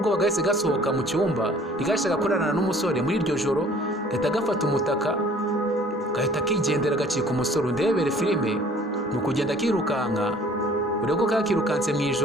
bagahise gasohoka mu cyumba, ntigashaka kurarana n'umusore muri iryo joro. Gahita gafata umutaka gahita kigendera gacika umusore. Undebere filime mu kugenda kirukanka, urebe ko kakirukanse mu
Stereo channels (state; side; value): normal; both; correlation 0.53